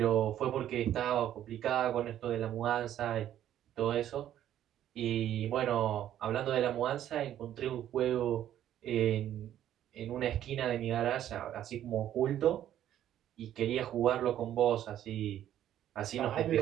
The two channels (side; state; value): left; quieter; 11.5 dB